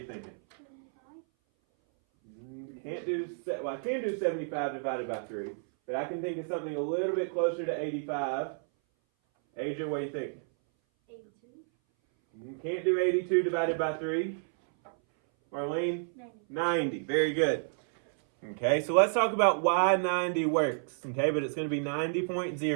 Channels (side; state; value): left; silent; 57 dB below the other